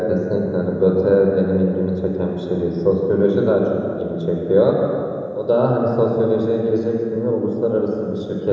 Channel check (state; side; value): identical; both; correlation 1.00